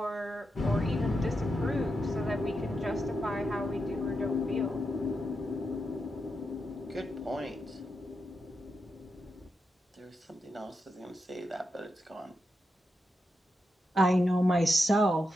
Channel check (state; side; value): normal; both; correlation 0.86